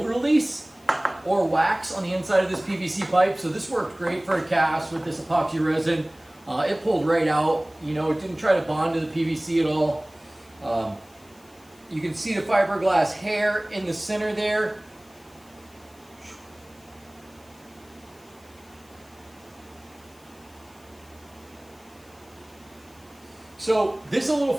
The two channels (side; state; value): left; noise; hiss, 28 dB below the sound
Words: release or wax on the inside of this PVC pipe, so this worked great for a cast with this epoxy resin. It pulled right out, you know, it didn't try to bond to the PVC at all. You can see the fiberglass hair in the center there. So this is a little